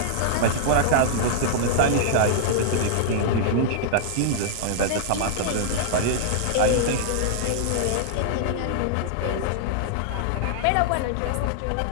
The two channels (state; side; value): different; both; correlation -0.01